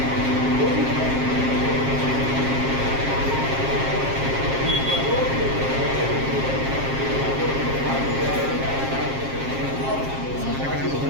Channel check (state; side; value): late; left; 7.5 ms